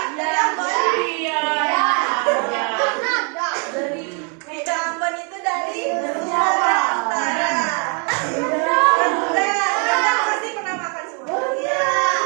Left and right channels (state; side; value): quieter; left; 37.4 dB